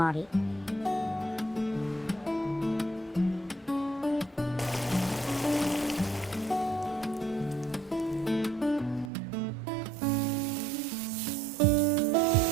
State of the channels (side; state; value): left; drops out; at 9.1 s